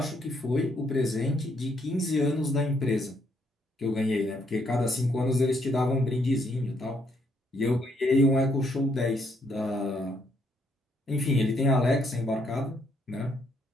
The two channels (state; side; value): normal; both; correlation 0.72